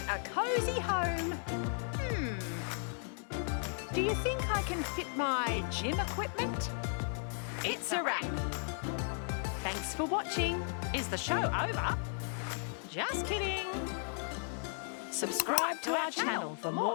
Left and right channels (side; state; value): right; silent; 54 dB below the other